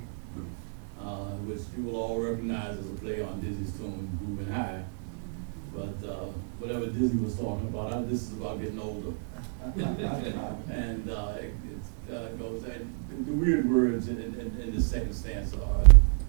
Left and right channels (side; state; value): left; silent; 58 dB below the other